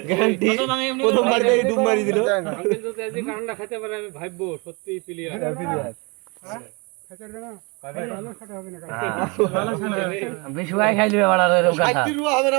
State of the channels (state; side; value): quieter; left; 29.6 dB